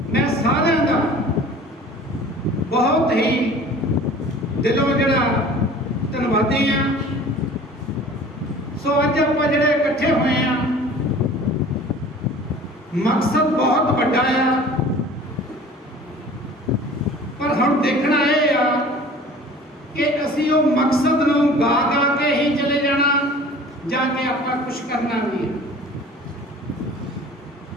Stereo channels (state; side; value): normal; both; correlation 0.45